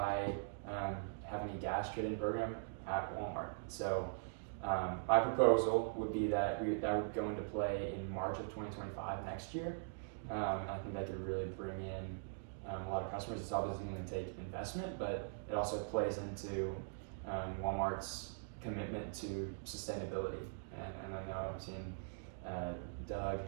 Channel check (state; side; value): silent; left; digital silence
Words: having a gas trading program at Walmart. So my proposal would be that that would go into play in March of 2025 next year. I think that could really bring in a lot of customers. It's obviously going to take investment, but it also plays into Walmart's commitment to sustainability. And I know I'm seeing Doug